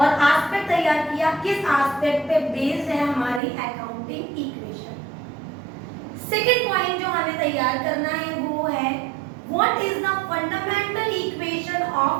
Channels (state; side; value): drops out; left; at 3.4 s